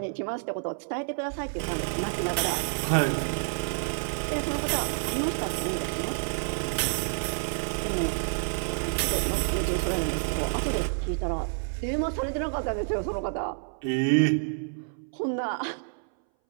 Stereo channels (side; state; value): left; silent; 59 dB below the other